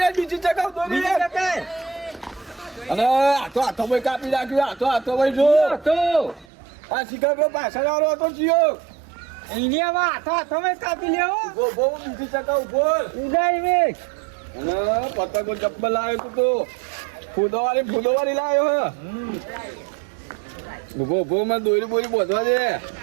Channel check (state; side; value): drops out; left; at 6.5 s